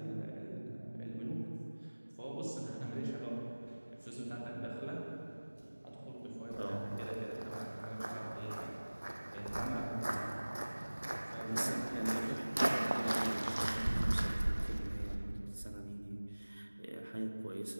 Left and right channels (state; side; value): inverted; both; correlation -1.00